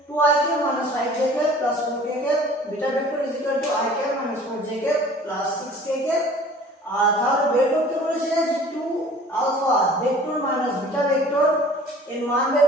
2ik minus 5jk plus 4kk, beta vector is equal to ik minus 4jk plus 6kk। আর তাহলে বের করতে বলেছে যে 2 alpha vector minus beta vector এর মান বের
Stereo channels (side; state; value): both; normal; correlation 0.47